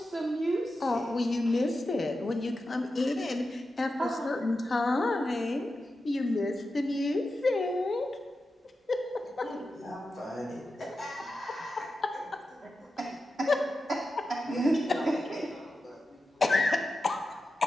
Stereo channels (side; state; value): both; normal; correlation 0.91